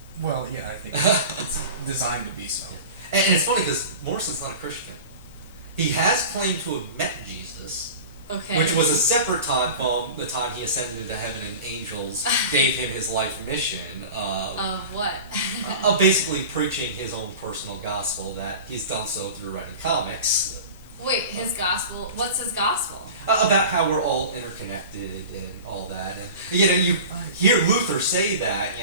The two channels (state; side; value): inverted; both; correlation -0.35